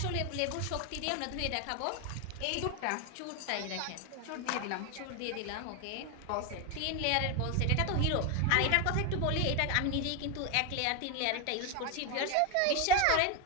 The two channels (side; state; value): both; different; correlation 0.01